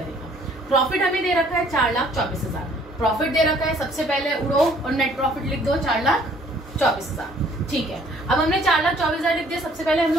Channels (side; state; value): both; normal; correlation 0.59